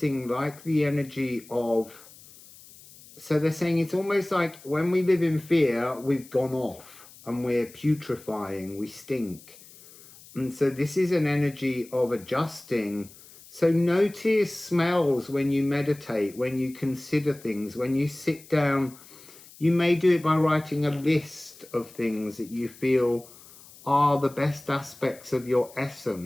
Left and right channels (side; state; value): left; noise; hiss, 22 dB below the sound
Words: like the energy of, so they're saying it's almost like when we live in fear, we've gone off and we're putrefying, we stink. And so this is an energy of adjusting. So notice smells when you meditate, when you consider things, when you sit down, You may do it by writing a list of things that you feel are the best aspects of your